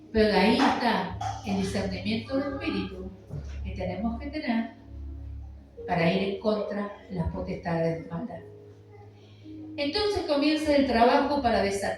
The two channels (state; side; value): identical; both; correlation 1.00